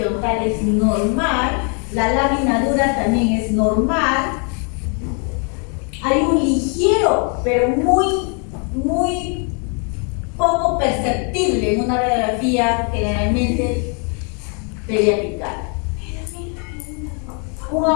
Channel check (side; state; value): right; quieter; 38.6 dB